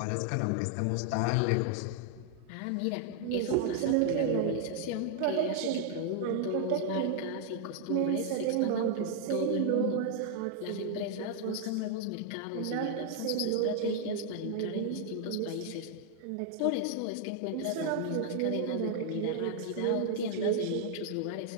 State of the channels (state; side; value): different; both; correlation 0.00